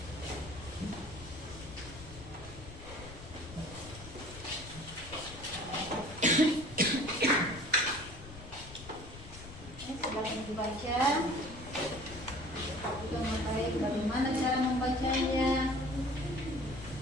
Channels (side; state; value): left; noise; rumble, 15 dB below the sound